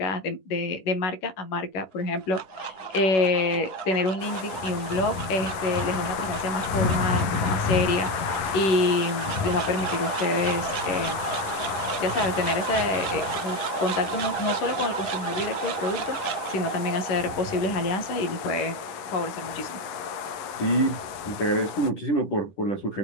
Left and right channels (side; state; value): right; late; 11 ms